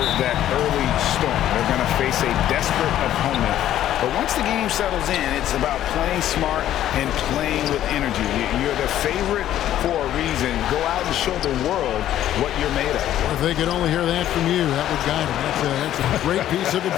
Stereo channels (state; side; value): quieter; right; 12.1 dB